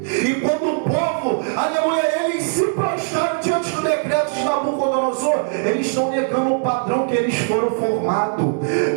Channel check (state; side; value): silent; left; digital silence